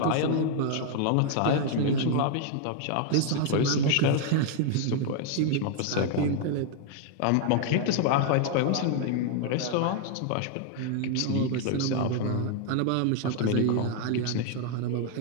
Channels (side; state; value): both; different; correlation 0.00